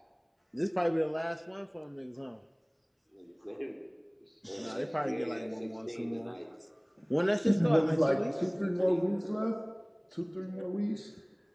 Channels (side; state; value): both; identical; correlation 1.00